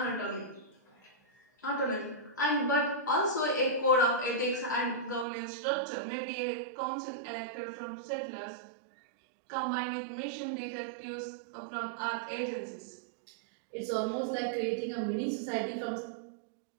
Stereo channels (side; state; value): left; drops out; at 5.2 s